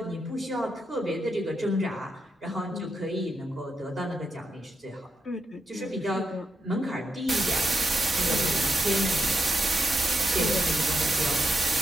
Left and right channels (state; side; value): normal; both; correlation 0.83